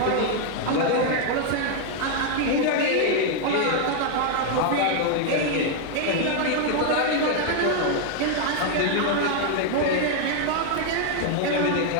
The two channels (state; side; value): different; both; correlation 0.00